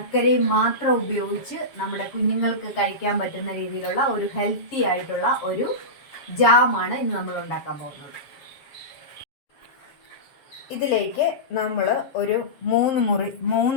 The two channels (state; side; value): late; right; 7.2 ms